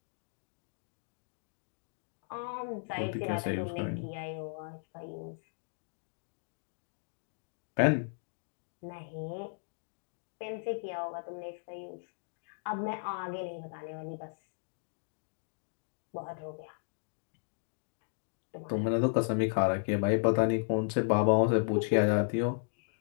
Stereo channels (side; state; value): right; silent; digital silence